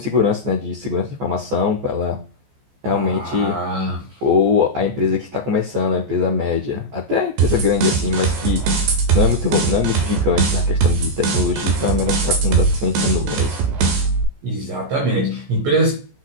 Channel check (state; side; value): late; left; 14 ms